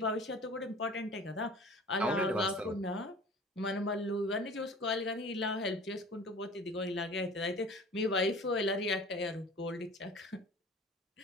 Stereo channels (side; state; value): both; normal; correlation 0.43